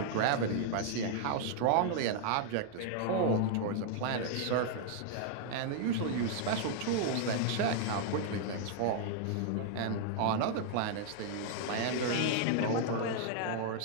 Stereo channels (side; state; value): both; different; correlation 0.00